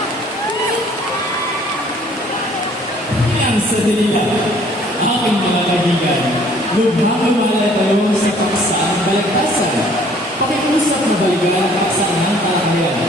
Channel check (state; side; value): normal; both; correlation 0.57